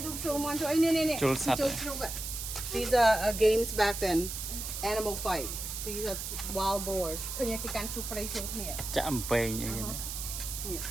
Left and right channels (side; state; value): right; noise; hiss, 6 dB below the sound